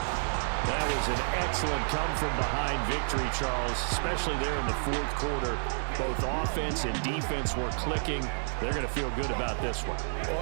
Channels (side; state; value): left; silent; digital silence